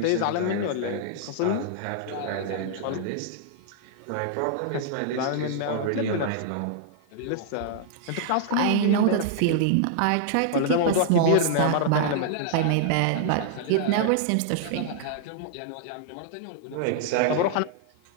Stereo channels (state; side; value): different; both; correlation -0.01